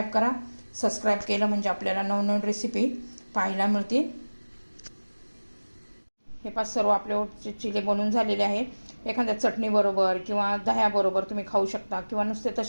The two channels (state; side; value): inverted; both; correlation -1.00